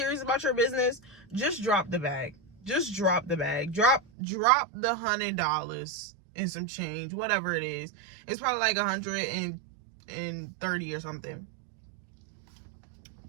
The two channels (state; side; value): drops out; left; at 4.0 s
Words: about your business, just drop the bag. Just drop the bag. Drop the $100 and some change, whatever it is. It's probably like 130 or something.